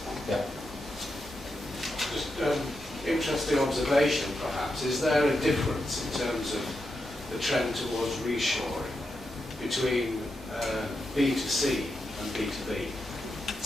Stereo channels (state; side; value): normal; both; correlation 0.86